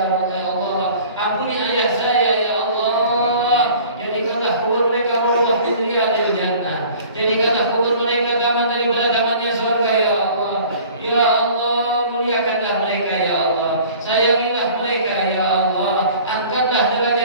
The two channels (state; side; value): inverted; both; correlation -0.47